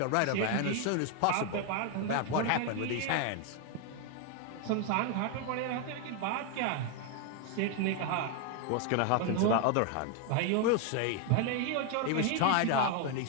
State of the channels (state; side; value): different; both; correlation 0.01